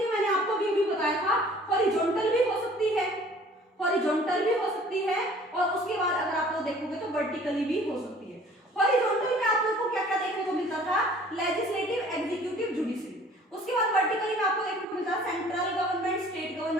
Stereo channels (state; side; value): normal; both; correlation 0.52